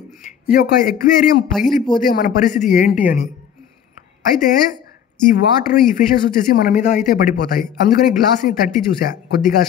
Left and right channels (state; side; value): quieter; right; 8.8 dB